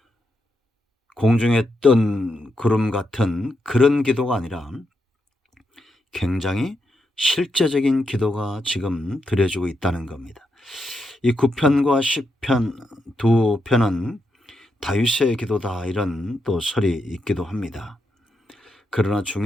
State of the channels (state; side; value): normal; both; correlation 0.83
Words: 공중에 뜬 구름 같은 그런 기도가 아니라 굉장히 실제적인 기도가 지금 드려지고 있다는 겁니다. 이 9편과 10편 두 편은 다윗의 기도다 이런 또 설이 있기도 합니다. 그러나